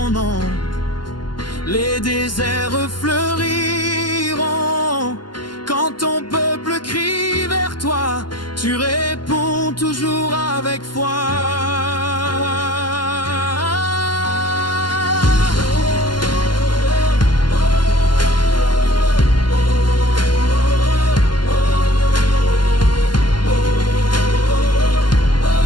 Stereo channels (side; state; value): right; late; 0.71 ms